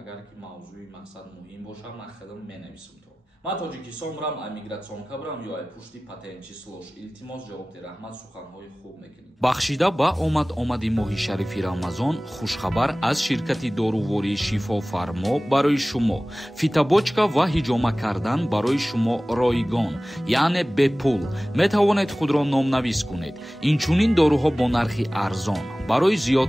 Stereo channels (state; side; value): normal; both; correlation 0.98